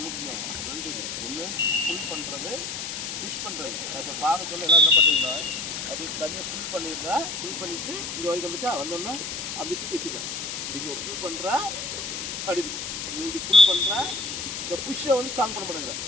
என்ன செஞ்சோம், ரெண்டு ஒன்று ஃபுல் பண்ணுறது, புஷ் பண்ணுறது. இப்போ பார்க்க சொல்ல எல்லாம் என்ன பண்ணுறீங்கன்னா அது தனியாக ஃபுல் பண்ணிவிட்டு இங்கே வரைக்கும் வந்துச்சா வந்தோன்னா அப்படி தூக்கி வச்சுக்கலாம். இங்கே ஃபுல் பண்ணுறா அப்படி இப்படி ஃபுல் பண்ணுறா. இந்த புஷ்ஷை வந்து ஸ்ட்ராங் பண்ண மாட்டேங்கிற.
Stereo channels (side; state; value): left; noise; hiss, 5 dB below the sound